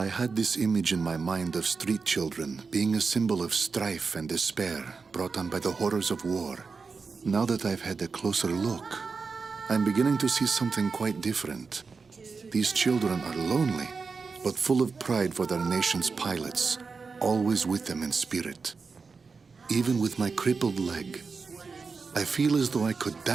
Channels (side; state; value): left; quieter; 4.8 dB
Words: had this image in my mind of street children being a symbol of strife and despair brought on by the horrors of war. Now that I've had a closer look, I'm beginning to see something quite different. These children are lonely, but full of pride for their nation's pilots, always with them in spirit. Even with my crippled leg, I feel as though I could